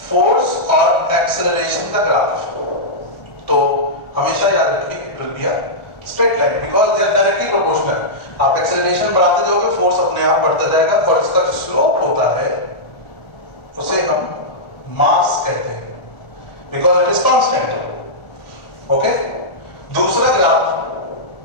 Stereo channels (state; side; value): late; right; 1.4 ms